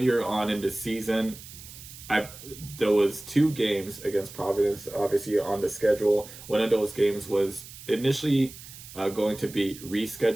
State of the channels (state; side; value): noise; right; hiss, 16 dB below the sound